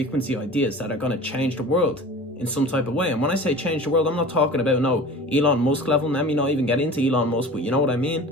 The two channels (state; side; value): normal; both; correlation 0.39